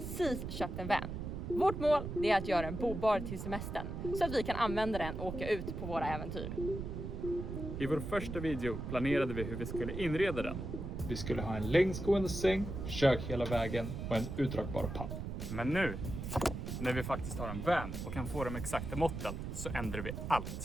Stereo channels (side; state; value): right; noise; rumble, 6 dB below the sound